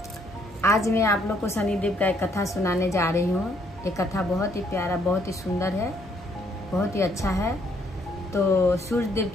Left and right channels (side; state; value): both; normal; correlation 0.69